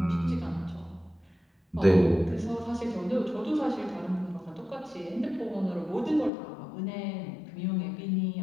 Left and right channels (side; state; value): right; drops out; at 6.3 s